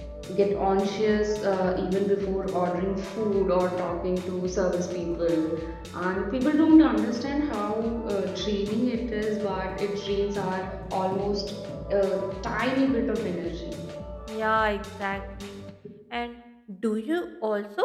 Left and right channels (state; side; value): identical; both; correlation 1.00